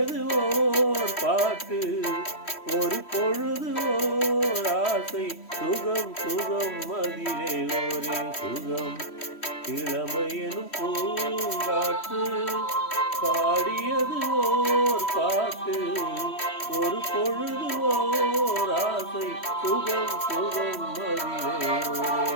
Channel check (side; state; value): right; late; 3.1 ms